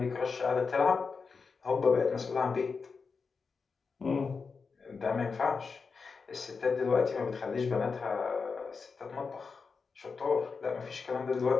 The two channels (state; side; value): quieter; right; 5.0 dB